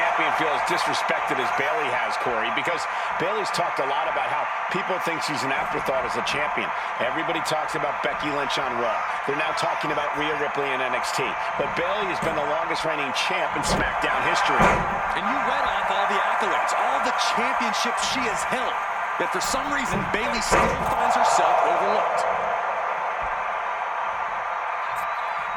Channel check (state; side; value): identical; both; correlation 1.00